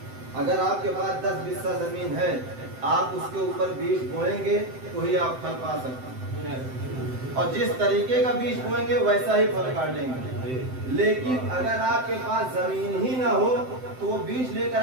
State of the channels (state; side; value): late; left; 7.8 ms